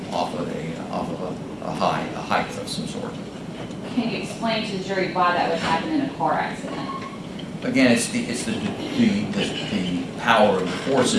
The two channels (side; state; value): both; identical; correlation 1.00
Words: off of a height of some sort. Can you explain to the jury why that would happen in a car accident? Again, it's the power of the